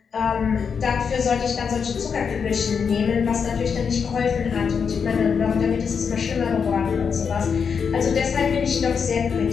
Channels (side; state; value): right; quieter; 6.3 dB